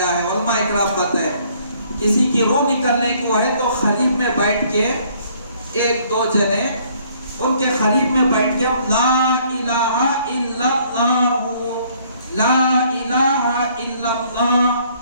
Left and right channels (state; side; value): inverted; both; correlation -0.63